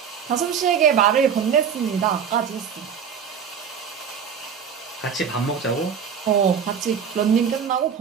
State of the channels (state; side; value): quieter; left; 7.3 dB